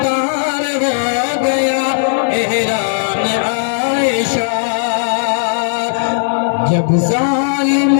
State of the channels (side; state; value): right; silent; digital silence